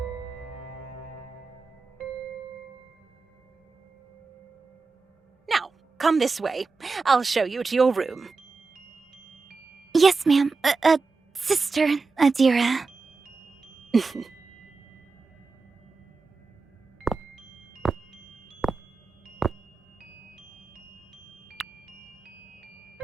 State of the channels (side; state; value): left; quieter; 4.3 dB